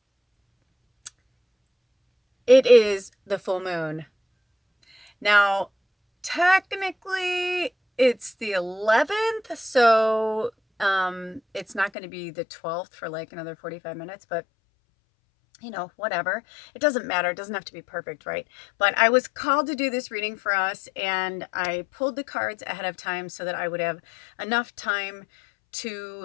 it is the full moon. Now, technically it's the 11th, so it's not going to be the 12th for another 45 minutes, but whatever. It doesn't matter. It doesn't have to be perfect, right? But I was called to do this reading for us, and I pulled the cards ahead of time so that I would have enough time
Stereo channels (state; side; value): drops out; right; at 11.9 s